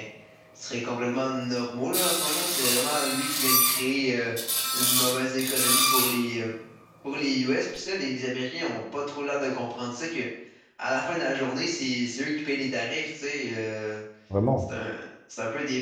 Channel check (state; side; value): identical; both; correlation 1.00